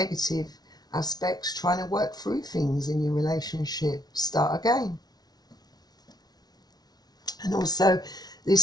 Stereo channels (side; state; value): right; late; 0.19 ms